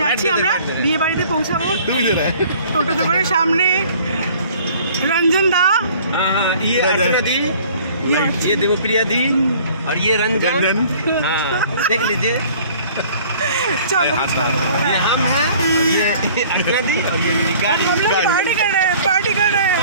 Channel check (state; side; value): inverted; both; correlation -0.52